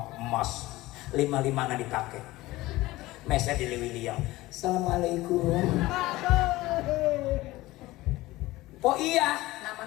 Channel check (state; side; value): quieter; right; 18.5 dB